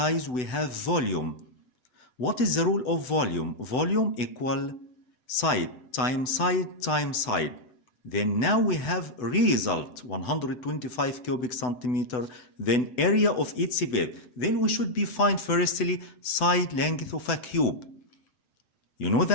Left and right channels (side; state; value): right; late; 8.0 ms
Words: we have volume. What is the rule of volume? Volume equal side times side times side. Then now we have result 125 cubic centimeter, then area of each base. Then we should be find firstly side length of a cube. You know